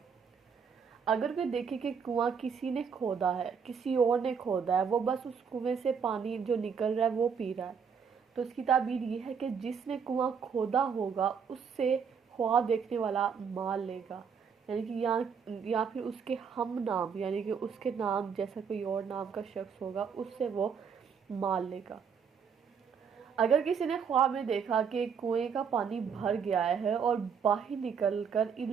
اگر کوئی دیکھے کہ کنواں کسی نے کھودا ہے، کسی اور نے کھودا ہے، وہ بس اس کنویں سے پانی جو نکل رہا ہے وہ پی رہا ہے، تو اس کی تعبیر یہ ہے کہ جس نے کنواں کھودا ہوگا اس سے خواب دیکھنے والا مال لے گا، یعنی کہ یا پھر اس کے ہم نام، یعنی کہ اس کے نام جیسا کوئی اور نام کا شخص ہوگا اس سے وہ مال لے گا۔ اگر کسی نے خواب میں دیکھا کہ کنویں کا پانی بھر گیا ہے اور باہر نکل کر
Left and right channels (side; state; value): left; quieter; 6.6 dB